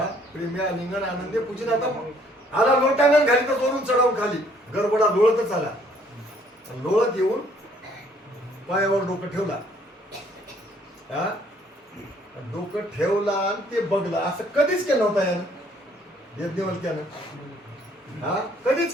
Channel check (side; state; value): both; normal; correlation 0.62